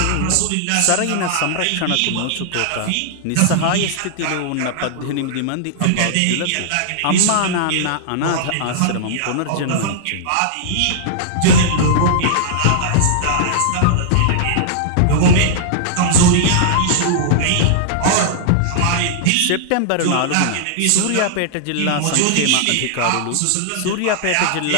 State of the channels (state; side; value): different; both; correlation -0.01